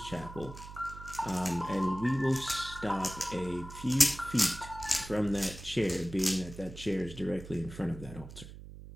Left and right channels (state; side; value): noise; right; hum, 14 dB below the sound